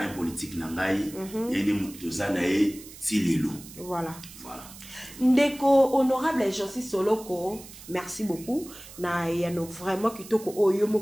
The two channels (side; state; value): right; noise; hiss, 17 dB below the sound